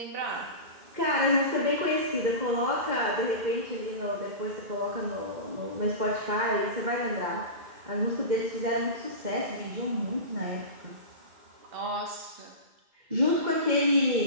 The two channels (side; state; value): left; late; 2.1 ms